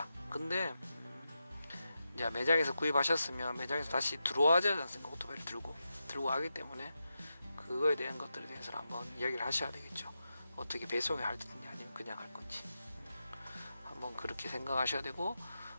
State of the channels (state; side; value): inverted; both; correlation -0.89